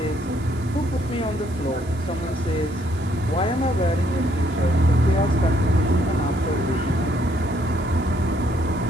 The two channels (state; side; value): noise; right; hiss, 24 dB below the sound